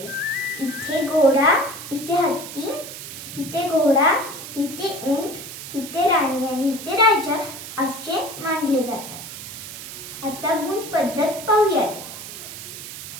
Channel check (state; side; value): noise; right; hiss, 11 dB below the sound